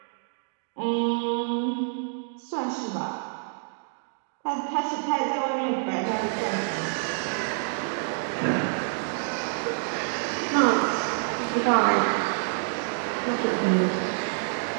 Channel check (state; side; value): silent; left; digital silence